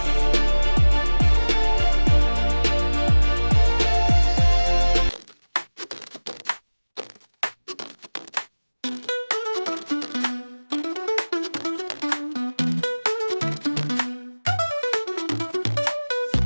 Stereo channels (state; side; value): inverted; both; correlation -1.00